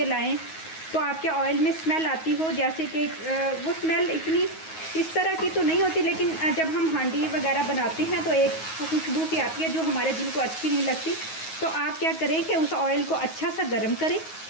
लाएँ तो आपके ऑयल में स्मेल आती हो, जैसे कि वो स्मेल इतनी इस तरह की तो नहीं होती, लेकिन जब हम हांडी वगैरह बनाते हैं तो एक खुशबू सी आती है जो हमारे दिल को अच्छी नहीं लगती। तो आप क्या करें कि उस ऑयल को अच्छा सा गर्म करें।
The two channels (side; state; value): right; late; 9.4 ms